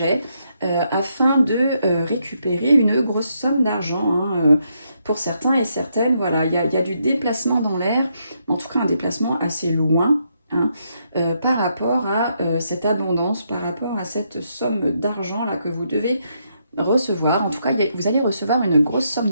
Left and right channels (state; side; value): inverted; both; correlation -0.78